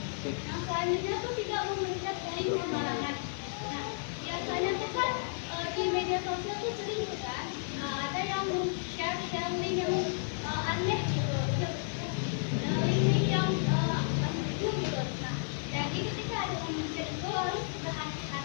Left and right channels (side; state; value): right; silent; 56 dB below the other